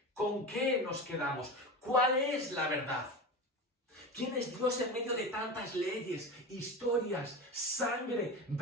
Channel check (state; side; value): normal; both; correlation 0.26